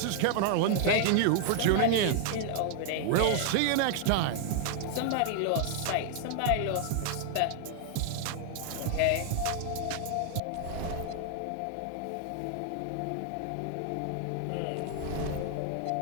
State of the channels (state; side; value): different; both; correlation 0.00